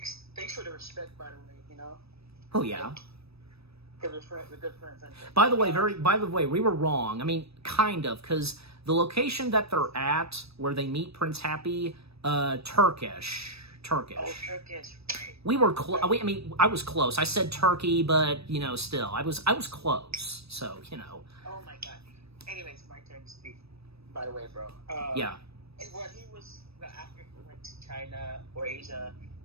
for the respect, by the way, you know? Oh, yeah. We're good friends. By the way, we were wrong. I mean, kind of, because the location that they're at, where they meet Prince Happy, Turkish. Oh, Turkish, right. We were close. I mean, I was close. I said Turkey, but, you know, still, I was close. So, you know. Oh my God. Anyways, my turn to speak. By the way, bro. Yeah. And when he was after he went to China or Asia,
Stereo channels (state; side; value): late; left; 0.78 ms